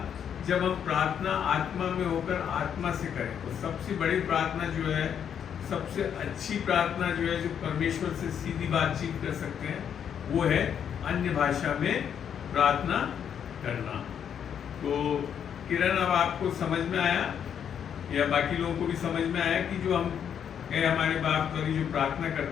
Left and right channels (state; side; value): quieter; right; 8.4 dB